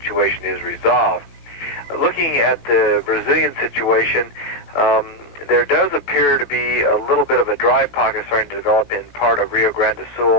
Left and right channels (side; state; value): right; late; 19 ms